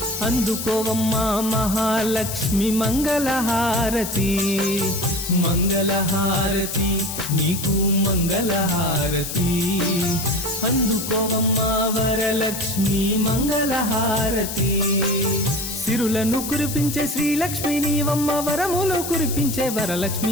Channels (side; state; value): left; noise; hiss, 6 dB below the sound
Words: అందుకోవమ్మా మహాలక్ష్మి మంగళహారతి మంగళహారతి నీకు మంగళహారతి అందుకోవమ్మా వరలక్ష్మి మంగళహారతి సిరులను కురిపించే శ్రీలక్ష్మి నీవమ్మ వరములు కురిపించే